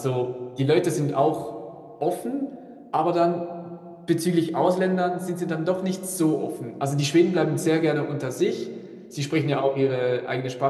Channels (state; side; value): identical; both; correlation 1.00